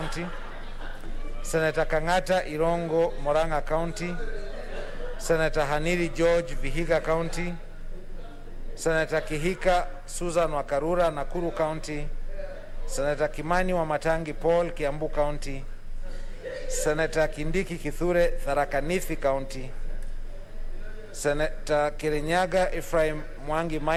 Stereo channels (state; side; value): identical; both; correlation 1.00